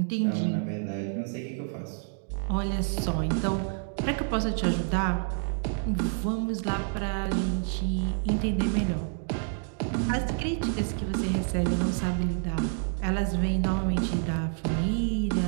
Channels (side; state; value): left; silent; 59 dB below the other